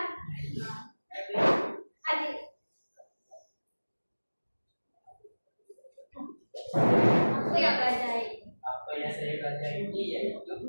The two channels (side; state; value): both; inverted; correlation -1.00